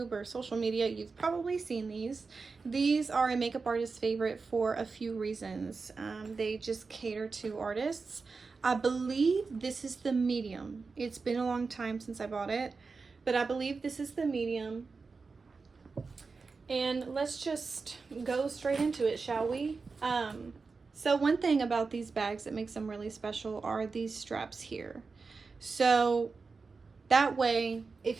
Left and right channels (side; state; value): left; quieter; 4.5 dB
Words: or social media, you've probably seen these. These are a makeup artist's favorite for a few reasons. They just cater to artists. I believe this is the medium. It's been a long time since I bought it, but I believe this is the medium. And let's just go straight into it, shall we? So one thing about these bags that makes them really special are these straps here. So that way,